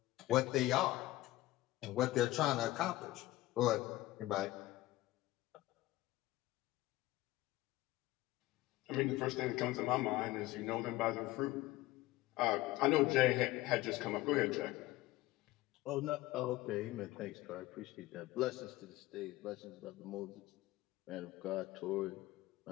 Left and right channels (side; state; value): right; quieter; 17.5 dB